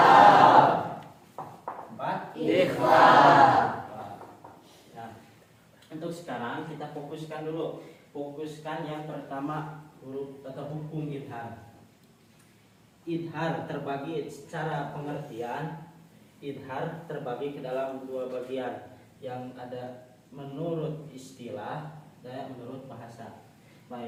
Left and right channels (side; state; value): both; identical; correlation 1.00